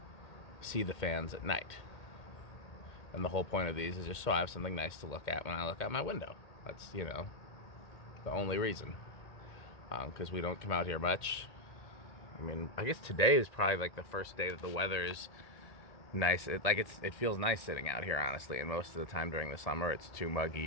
see the fans at night. And the whole point of these is just so I have something nice to look at when I look out my window. That's, the only reason. Because we don't come out here much. I mean, I guess today is probably like the first day that the weather is nice. It feels nice sitting out here, honestly. And most of the time during the summer, it's too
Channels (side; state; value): right; late; 1.8 ms